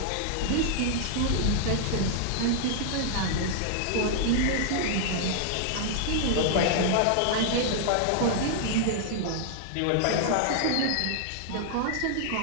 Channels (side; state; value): both; different; correlation -0.01